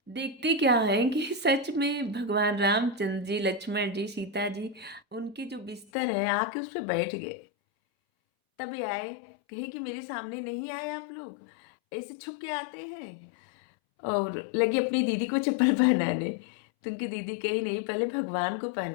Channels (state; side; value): drops out; right; at 5.9 s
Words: देखते क्या है कि सच में भगवान रामचंद्र जी, लक्ष्मण जी, सीता जी, उनके जो बिस्तर है आके उस पर बैठ गए। तब ये आए, कहे कि मेरे सामने नहीं आए आप लोग, ऐसे छुप के आते हैं। और लगे अपनी दीदी को चप्पल पहनाने। तो उनकी दीदी कही नहीं, पहले भगवान को